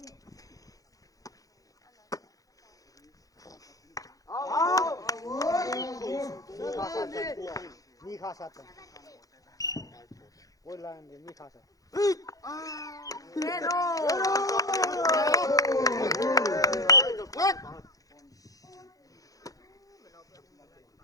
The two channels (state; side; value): late; right; 0.17 ms